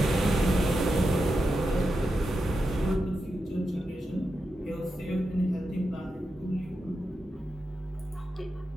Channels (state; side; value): normal; both; correlation 0.88